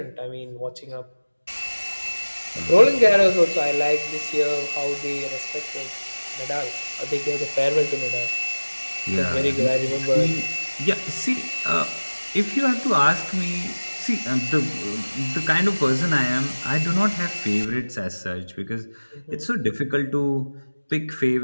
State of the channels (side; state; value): both; inverted; correlation -1.00